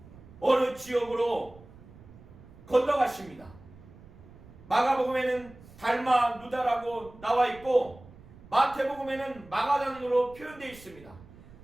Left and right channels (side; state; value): right; noise; rumble, 21 dB below the sound